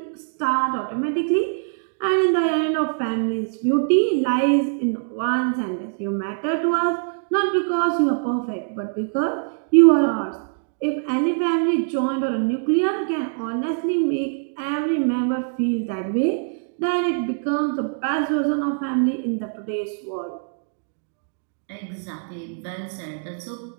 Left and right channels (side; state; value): left; silent; digital silence